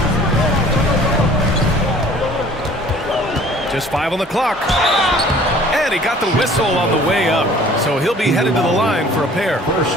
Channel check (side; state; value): both; normal; correlation 0.51